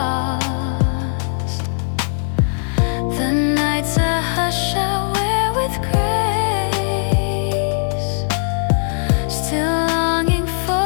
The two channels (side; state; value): right; silent; digital silence